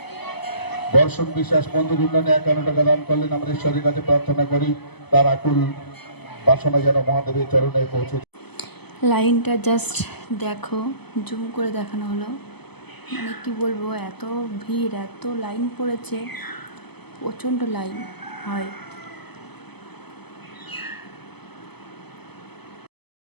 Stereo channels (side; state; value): right; late; 0.98 ms